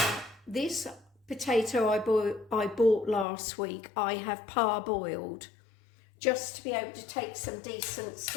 this potato I bought last week, I have parboiled, just to be able to take some decent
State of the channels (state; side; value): drops out; right; at 3.2 s